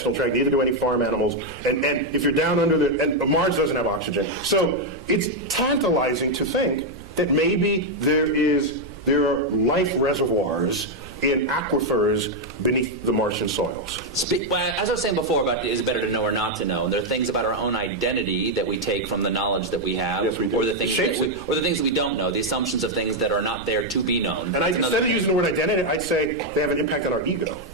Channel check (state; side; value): noise; right; rumble, 18 dB below the sound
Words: tract, neither do any farm animals. And if you're down under and Mars doesn't have oxygen. So it's tantalizing to think that maybe there are life reservoirs in aquifers beneath the Martian soils. As I was saying before about is it better to know or not to know, there are things about our own identity that we take from the knowledge that we have, Yes, we do. or the things that we don't know, the assumptions of things that are not there to be known. And instead of using the word identity, I'd say they have an impact on our ego.